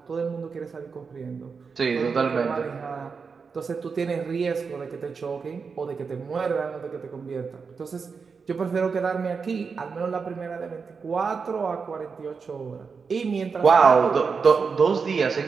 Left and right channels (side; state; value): left; quieter; 5.3 dB